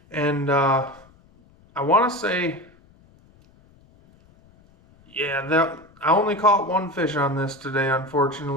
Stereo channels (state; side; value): noise; left; rumble, 29 dB below the sound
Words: And I want to say, yeah, I only caught one fish on this today,